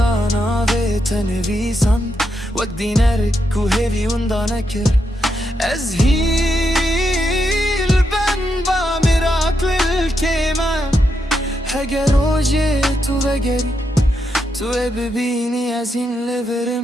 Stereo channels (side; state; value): both; normal; correlation 0.82